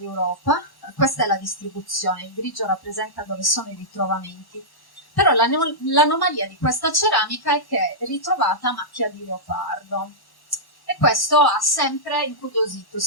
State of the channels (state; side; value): late; right; 1.1 ms